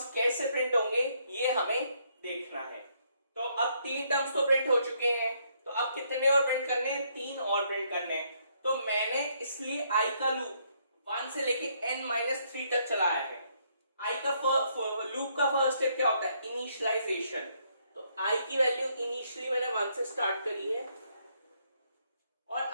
कैसे प्रिंट होंगे ये हमें देखना है। तो अब 3 टर्म्स तो प्रिंट हो चुके हैं, तो अब कितने और प्रिंट करने हैं? 3 और प्रिंट करने हैं। तो मैंने इसलिए i का लूप 1 से लेके n-3 तक चलाया है। i का लूप का फर्स्ट स्टेप क्या होता है? इनिशियलाइजेशन। तो i की वैल्यू इनिशियली मैंने 1 से स्टार्ट करी है और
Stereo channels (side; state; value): both; inverted; correlation -0.71